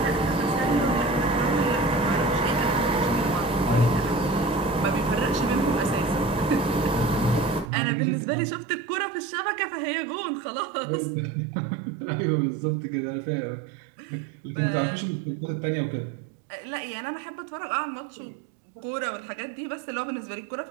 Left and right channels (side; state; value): left; drops out; at 7.7 s